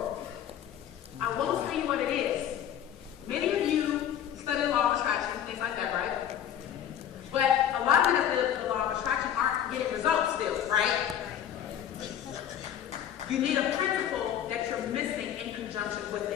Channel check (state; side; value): quieter; right; 10.0 dB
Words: I won't tell you what it is. Many of you study the law of attraction, things like that, right? But a lot of the law of attraction aren't getting results still, right? You need a principle that you're missing in conjunction with